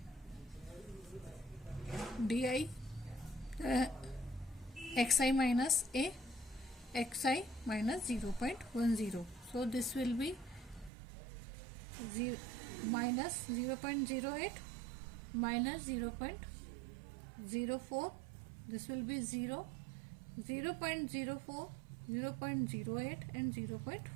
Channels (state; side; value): drops out; left; at 10.9 s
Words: di xi minus A, xi minus 0.10. So this will be minus 0.08 minus 0.04. This will be 0, 0.04, 0.08 and